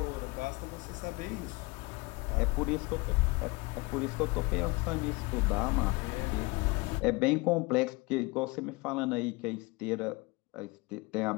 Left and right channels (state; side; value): quieter; right; 25.0 dB